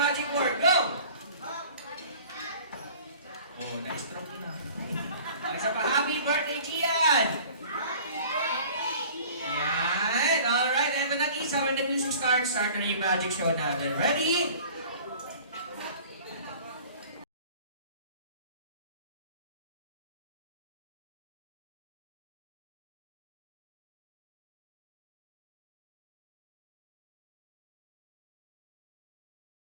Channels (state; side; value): inverted; both; correlation -0.46